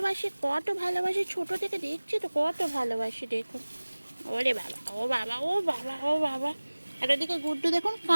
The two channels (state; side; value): inverted; both; correlation -1.00